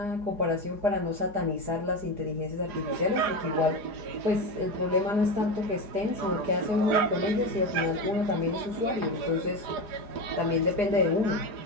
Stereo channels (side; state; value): left; late; 4.8 ms